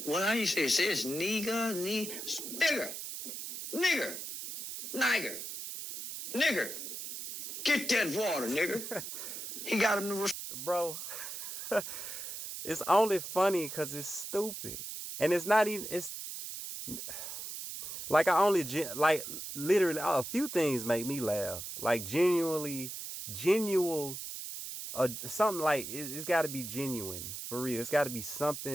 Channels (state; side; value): noise; right; hiss, 7 dB below the sound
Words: What do you say? It says nigger. Get that water, nigga. He got him to... Bro, it's only funny because it's stupid. And it's not even... Like like literally a few things make me laugh. Like genuinely, something like it's got to be genuine for real. It's got to be